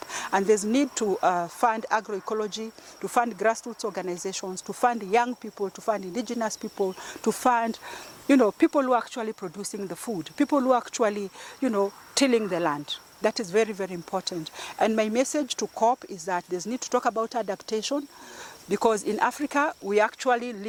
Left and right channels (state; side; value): identical; both; correlation 1.00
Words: And there's need to fund agroecology, to fund grassroots organizations, to fund young people, to fund indigenous people, to fund, you know, people who are actually producing the food, people who are actually, you know, tilling the land. That is very, very important. And my message to COP is that there's need to talk about adaptation, because in Africa, we are actually